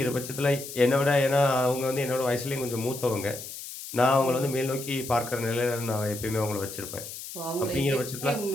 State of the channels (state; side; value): noise; left; hiss, 11 dB below the sound